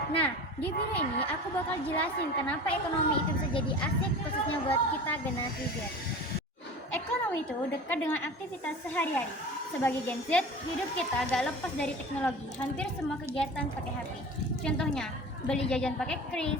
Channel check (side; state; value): both; normal; correlation 0.36